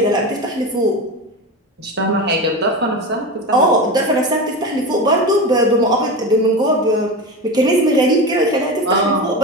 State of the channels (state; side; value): normal; both; correlation 0.23